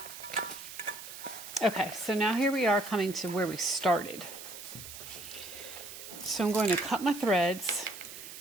Okay, so now here we are coming to where we started. So I'm going to cut my threads.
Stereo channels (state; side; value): noise; right; hiss, 12 dB below the sound